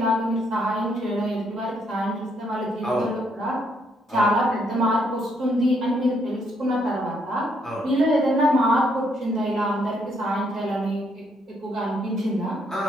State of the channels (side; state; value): both; normal; correlation 0.72